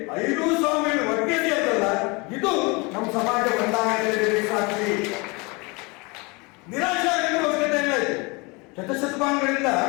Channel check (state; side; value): quieter; right; 27.6 dB